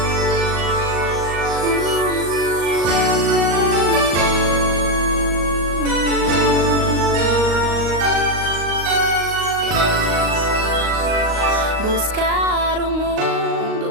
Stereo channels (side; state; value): left; late; 38 ms